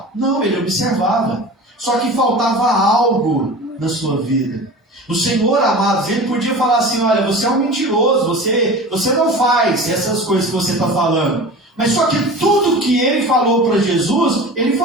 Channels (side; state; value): both; normal; correlation 0.36